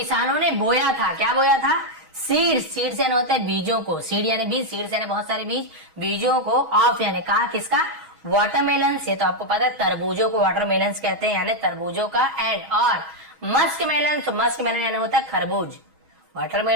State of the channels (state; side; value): late; left; 6.3 ms